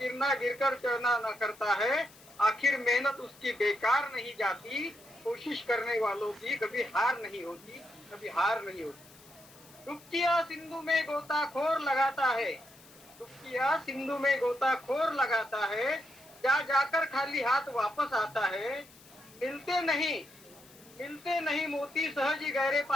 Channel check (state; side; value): noise; left; hiss, 23 dB below the sound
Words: गिरकर चढ़ना न करता है, आखिर मेहनत उसकी बेकार नहीं जाती, कोशिश करने वालों की कभी हार नहीं होती, कभी हार नहीं होती. डुबकियां सिंधु में गोताखोर लगाता है, डुबकियां सिंधु में गोताखोर लगाता है, जा जाकर खाली हाथ वापस आता है. मिलते नहीं मोती सहज ही गहरे